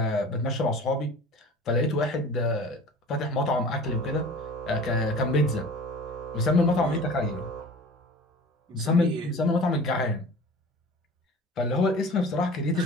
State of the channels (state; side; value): normal; both; correlation 0.40